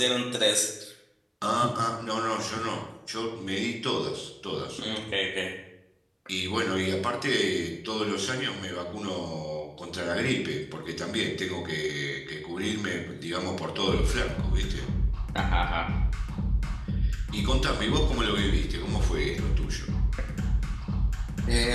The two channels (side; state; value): both; identical; correlation 1.00